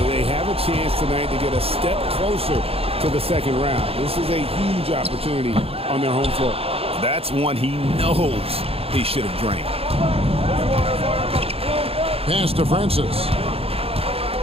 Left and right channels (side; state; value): left; late; 0.28 ms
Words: They have a chance tonight to get a step closer to the second round. This is a huge opportunity on their home floor. That's one he knows he should have drained. Pass to Francis.